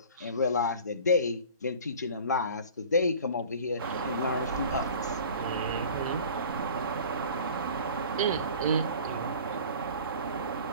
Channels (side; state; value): both; inverted; correlation -0.43